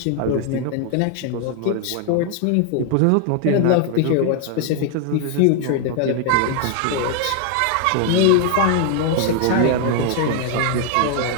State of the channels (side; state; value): both; different; correlation 0.00